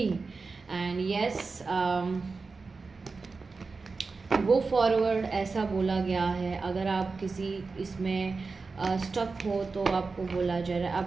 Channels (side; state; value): left; quieter; 4.3 dB